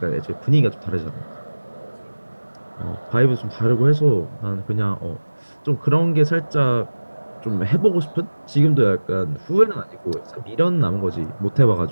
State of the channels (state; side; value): inverted; both; correlation -1.00